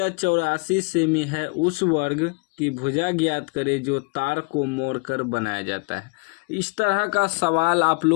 84 सेमी है, उस वर्ग की भुजा ज्ञात करें जो तार को मोड़कर बनाया जाता है। इस तरह का सवाल आप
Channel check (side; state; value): right; quieter; 33.3 dB